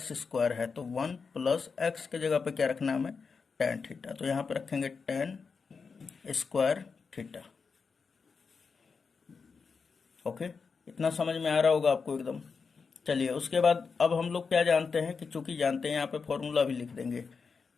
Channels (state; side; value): quieter; right; 5.2 dB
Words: है, तो 1 + x के जगह पे क्या रखना है हमें, tan थीटा, तो यहाँ पे रखेंगे tan² थीटा। ओके, इतना समझ में आ रहा होगा आपको एकदम। चलिए, उसके बाद अब हम लोग क्या जानते हैं कि चूंकि जानते हैं, यहाँ पे फॉर्मूला भी लिख देंगे